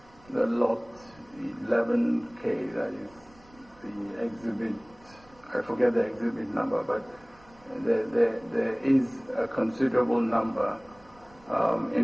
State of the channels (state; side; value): noise; right; rumble, 27 dB below the sound